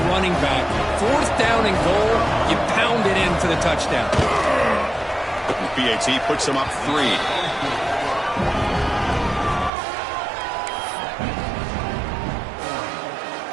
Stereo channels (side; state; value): left; drops out; at 9.7 s